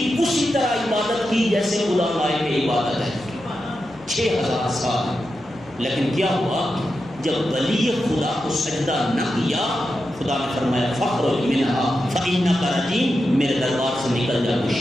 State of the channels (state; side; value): noise; left; hum, 24 dB below the sound